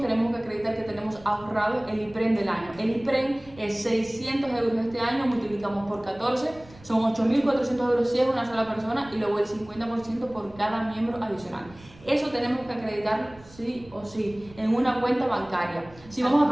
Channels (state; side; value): noise; right; rumble, 22 dB below the sound